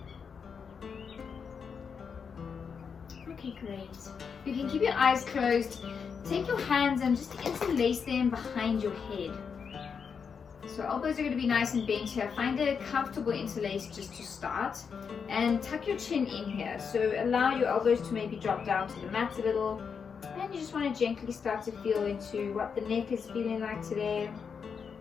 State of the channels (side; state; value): right; quieter; 6.3 dB